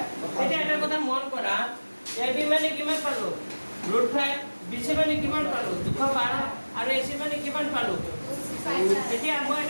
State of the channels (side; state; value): both; inverted; correlation -1.00